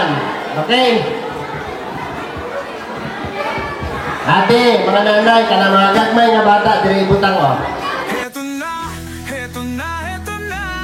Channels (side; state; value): both; identical; correlation 1.00